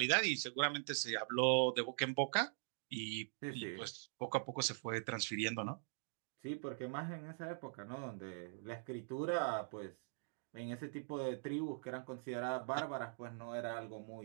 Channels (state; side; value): silent; left; digital silence